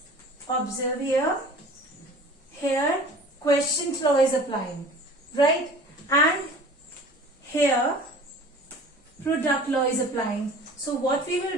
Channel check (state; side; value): normal; both; correlation 0.44